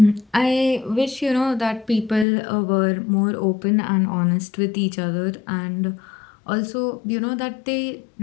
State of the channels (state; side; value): drops out; right; at 2.2 s